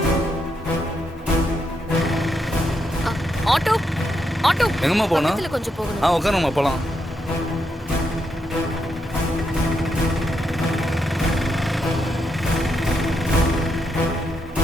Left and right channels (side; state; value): both; normal; correlation 0.81